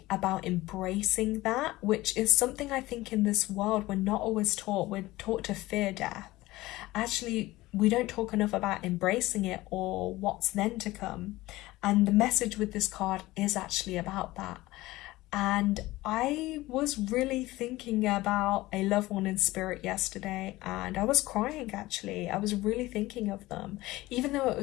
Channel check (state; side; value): quieter; right; 18.5 dB